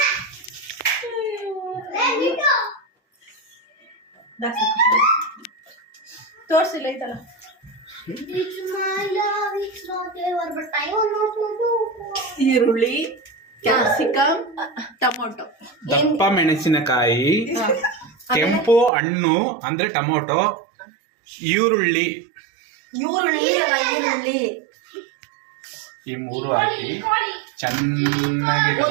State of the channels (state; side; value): drops out; left; at 18.9 s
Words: ತೋರ್ಸಿಲ್ಲ ಐತಲ್ಲ. ಈರುಳ್ಳಿ, ಕ್ಯಾಪ್ಸಿಕಮ್, ಟೊಮೊಟೊ, ದಪ್ಪ ಮೆಣಸಿನಕಾಯಿ, ಕೆಂಪು ಹಣ್ಣು ಅಂದ್ರೆ ಟೊಮೊಟೊ, ಈರುಳ್ಳಿ ಈ ಮೂರು ಹಾಕಿ ಚೆನ್ನಾಗಿ